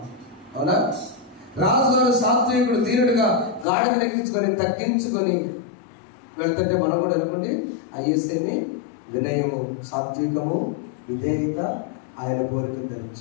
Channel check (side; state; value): right; drops out; at 3.7 s